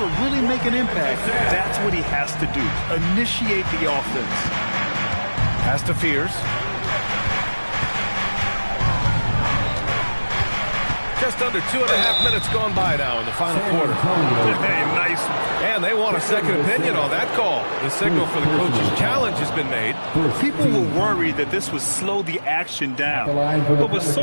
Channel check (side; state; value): both; inverted; correlation -1.00